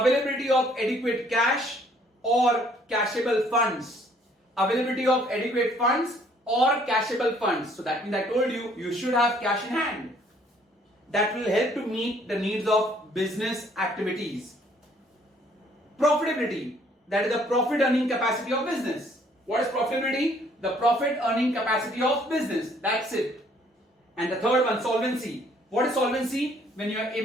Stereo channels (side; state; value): both; normal; correlation 0.62